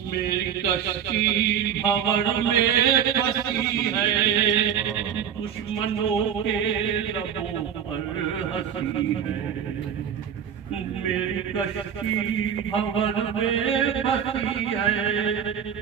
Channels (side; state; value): left; quieter; 8.5 dB